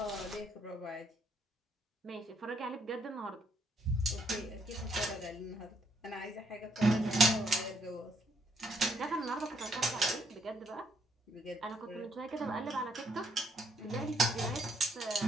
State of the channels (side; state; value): both; normal; correlation 0.72